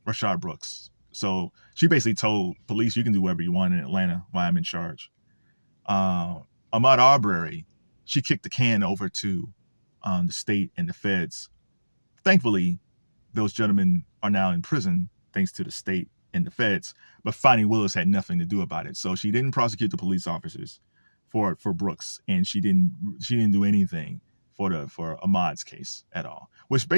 Brooks. So she basically told police, you can do whatever you want in Atlanta while I'm in charge. Ahmaud Arbery, she kicked the can over to the state and the feds. Thankfully, those gentlemen are now in prison thanks to the state and the feds. But Fani Willis had nothing to do about it, so she didn't prosecute the police officers for Brooks, and she didn't do anything for Ahmaud's case at all. Which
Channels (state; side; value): inverted; both; correlation -1.00